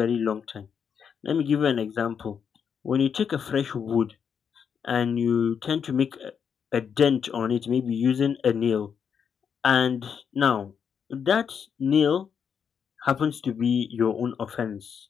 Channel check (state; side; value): quieter; right; 7.1 dB